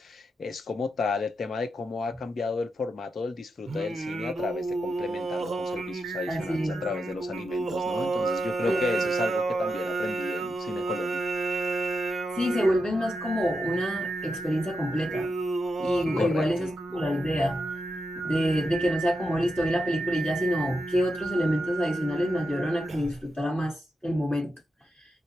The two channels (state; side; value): normal; both; correlation 0.86